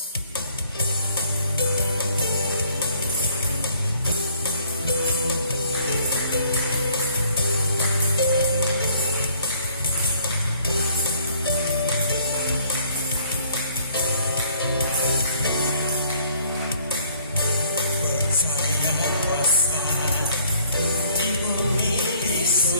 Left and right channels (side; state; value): both; inverted; correlation -0.61